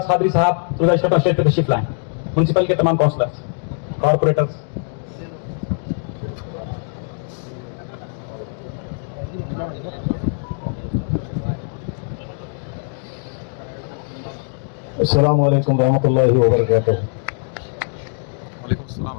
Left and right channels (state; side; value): silent; right; 57 dB below the other